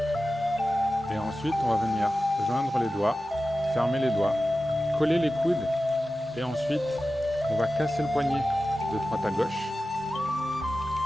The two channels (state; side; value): normal; both; correlation 0.94